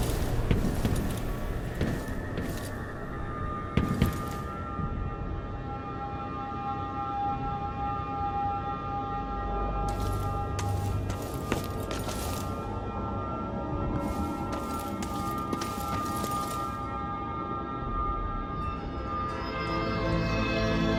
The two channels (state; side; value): identical; both; correlation 1.00